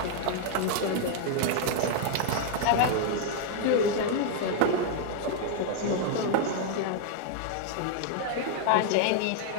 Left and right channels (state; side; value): different; both; correlation 0.00